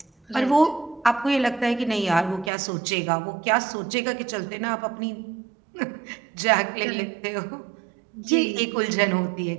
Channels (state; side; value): drops out; left; at 2.5 s